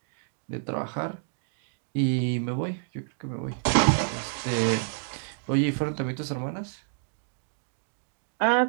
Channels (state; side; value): silent; left; digital silence